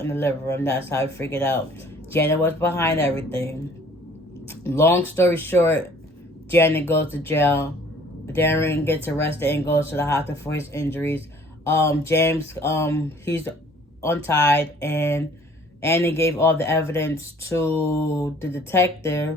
in the living room. That's how I figured out Janet was behind everything. Long story short, Janet goes to jail. Darren gets arrested and goes to the hospital for his injuries. James, he's untied, and Annie gave all the evidence to the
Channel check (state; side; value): normal; both; correlation 0.54